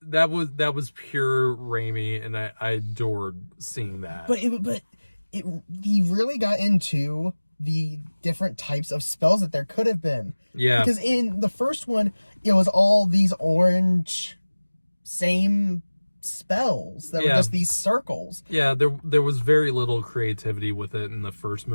that was pure Raimi, and I adored seeing that. But he really got into the different types of spells that there could have been. Yeah. Because in the first one, it was all these orange same spells that were just these circles. Yeah, there was very little creativity with it in the first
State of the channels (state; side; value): inverted; both; correlation -1.00